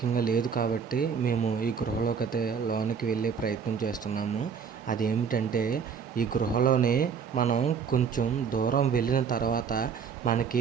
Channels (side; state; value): left; quieter; 6.5 dB